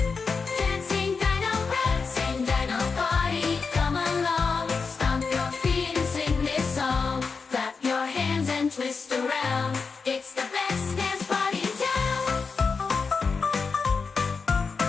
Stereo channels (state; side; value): quieter; right; 4.9 dB